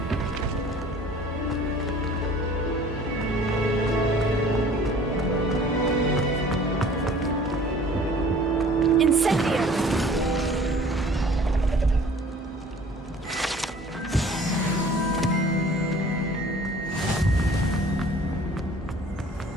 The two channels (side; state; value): both; normal; correlation 0.50